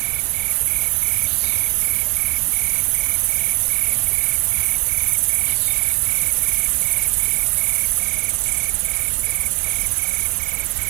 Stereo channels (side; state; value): left; quieter; 35.9 dB